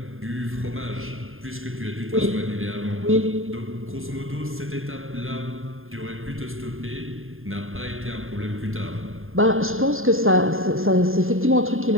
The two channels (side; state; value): left; late; 0.60 ms